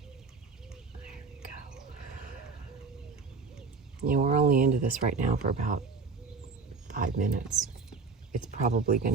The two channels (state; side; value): quieter; left; 4.7 dB